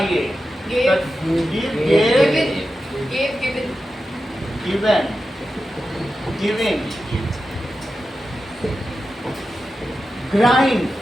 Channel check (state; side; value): normal; both; correlation 0.91